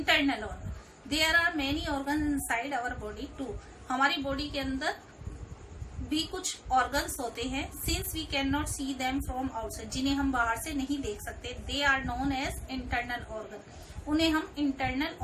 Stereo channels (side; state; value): both; identical; correlation 1.00